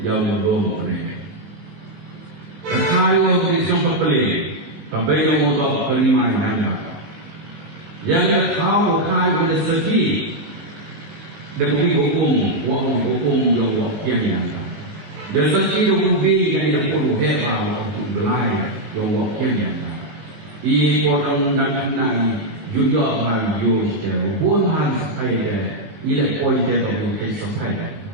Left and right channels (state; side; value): late; left; 19 ms